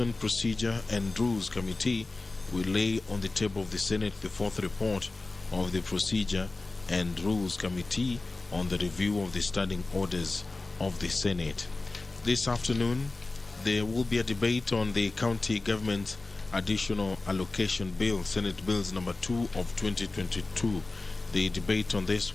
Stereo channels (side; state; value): right; quieter; 3.3 dB